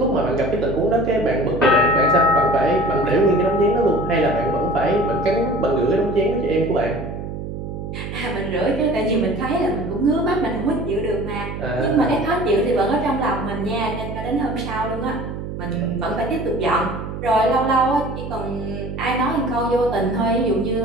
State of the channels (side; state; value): right; noise; hum, 7 dB below the sound